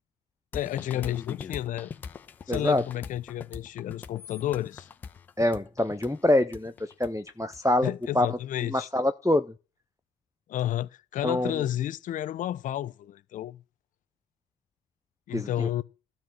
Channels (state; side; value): quieter; right; 3.5 dB